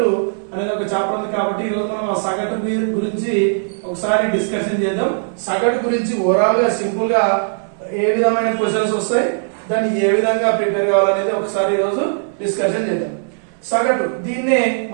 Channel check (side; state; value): left; silent; 61 dB below the other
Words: అనేది ఒక చాప్టర్ ఉంది. కాబట్టి ఈరోజు మనం ఆ సగటు గురించి ఒకసారి డిస్కషన్ చేద్దాం. సగటు గురించి ఓవరాల్ గా సింపుల్ గా ఏ విధమైన క్వశ్చన్స్ వస్తాయి, దాన్ని ఏ విధంగా ప్రిపేర్ కావాలనేది ఒకసారి ఈరోజు డిస్కషన్ చేద్దాం. సగటు దీన్నే